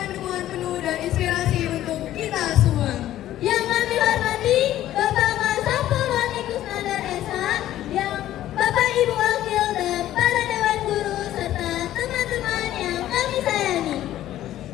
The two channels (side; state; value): right; quieter; 13.2 dB